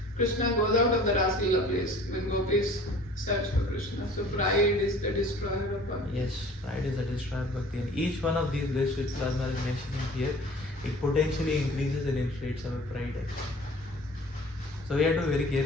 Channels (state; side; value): normal; both; correlation 0.47